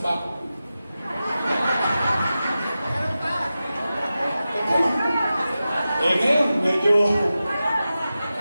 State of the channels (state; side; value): inverted; both; correlation -0.93